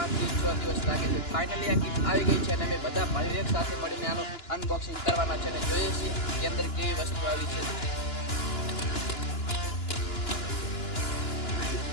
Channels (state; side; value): late; right; 2.9 ms